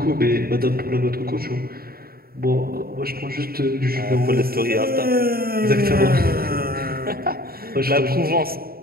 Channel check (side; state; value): left; late; 0.44 ms